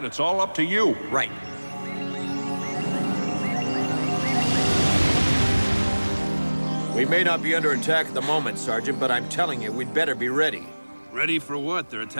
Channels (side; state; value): both; inverted; correlation -1.00